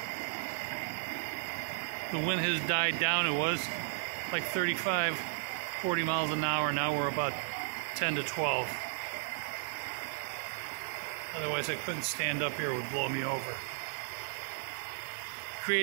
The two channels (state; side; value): silent; left; 55 dB below the other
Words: The wind has died down. It was like 35, 40 miles an hour. Now we're about 10 to 12. Otherwise I couldn't stand up here. It would blow me over.